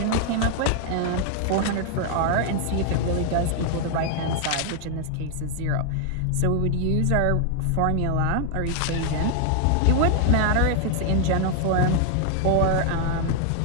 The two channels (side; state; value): both; different; correlation 0.00